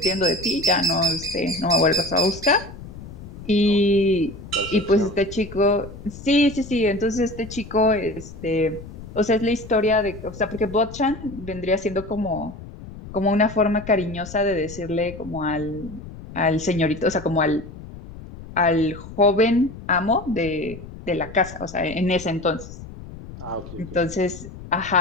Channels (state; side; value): noise; left; rumble, 14 dB below the sound